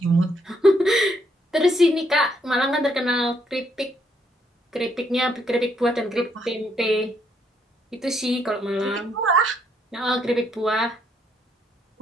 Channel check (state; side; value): normal; both; correlation 0.72